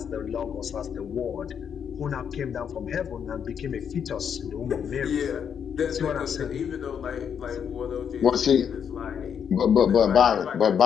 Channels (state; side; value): quieter; right; 7.8 dB